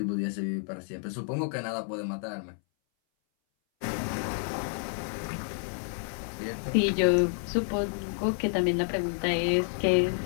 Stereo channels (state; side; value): silent; right; 58 dB below the other